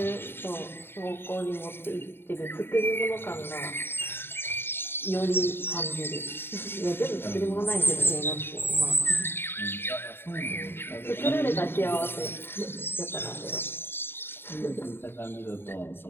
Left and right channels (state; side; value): late; right; 0.11 ms